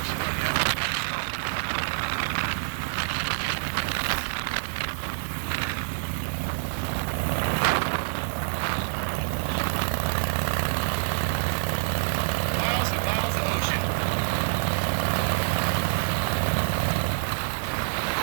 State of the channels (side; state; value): left; silent; digital silence